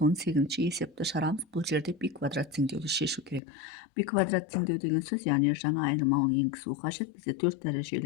есепті шығарамыз. Бұл жерде π квадрат теңдеуді шешу керек. π квадрат теңдеу деген сөз, яғни жаңа айнымалыны енгізу қажет. Бізде 4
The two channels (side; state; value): right; drops out; at 3.4 s